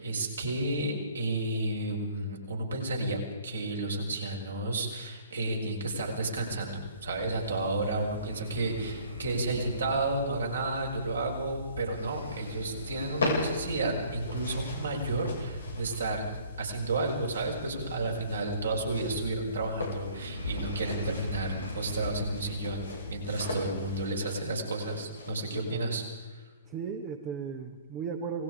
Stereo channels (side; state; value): both; inverted; correlation -0.56